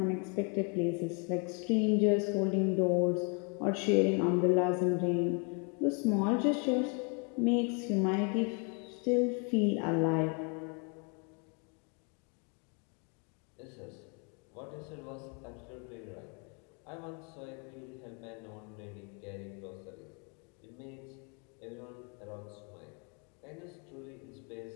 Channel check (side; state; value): right; quieter; 36.2 dB